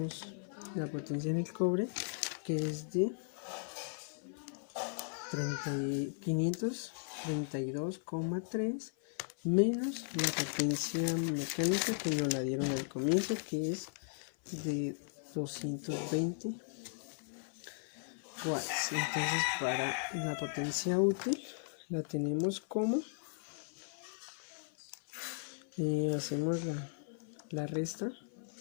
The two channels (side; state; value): right; silent; 53 dB below the other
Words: la potencia en el cobre, que es de 532,3 menos la potencia mecánica que nos la dieron al comienzo, que es de 220 watts. Entonces para la potencia útil la tenemos como hacemos la resta